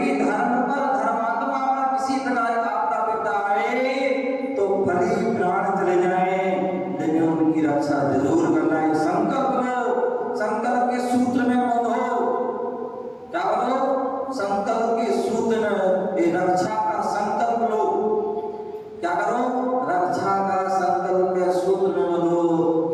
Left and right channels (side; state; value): both; identical; correlation 1.00